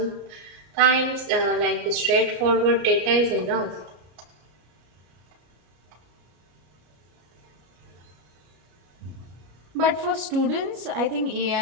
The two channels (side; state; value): left; late; 33 ms